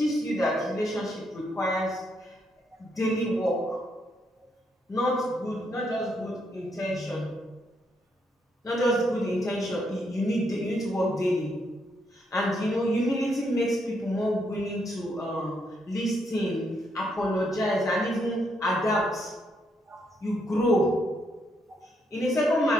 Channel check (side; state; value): both; normal; correlation 0.76